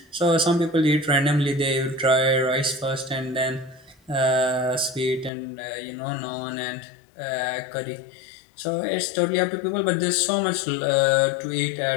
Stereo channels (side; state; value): right; drops out; at 5.3 s